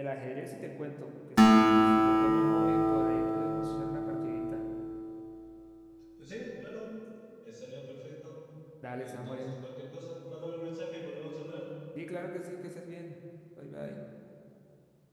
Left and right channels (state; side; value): identical; both; correlation 1.00